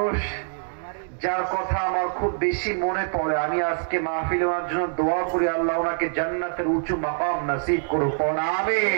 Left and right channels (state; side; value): silent; left; digital silence